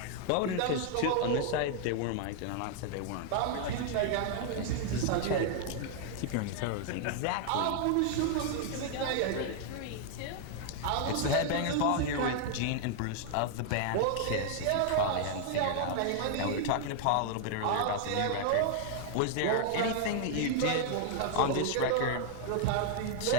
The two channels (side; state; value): both; different; correlation 0.00